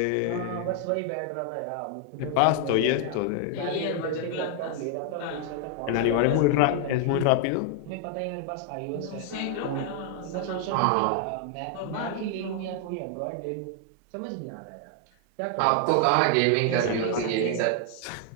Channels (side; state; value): both; different; correlation 0.00